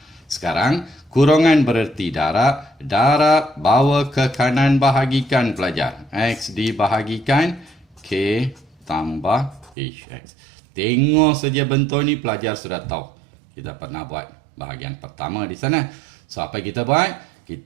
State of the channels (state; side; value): drops out; left; at 9.8 s